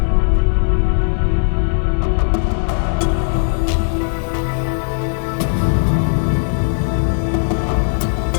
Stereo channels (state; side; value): silent; right; digital silence